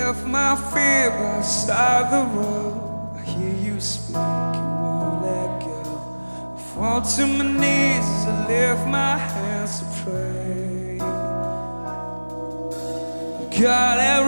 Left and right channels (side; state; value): both; inverted; correlation -1.00